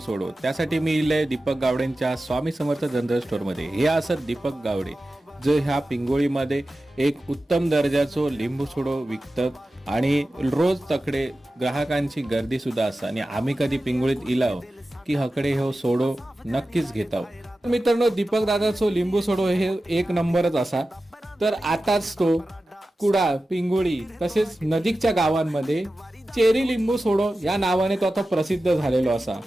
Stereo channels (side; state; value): both; normal; correlation 0.94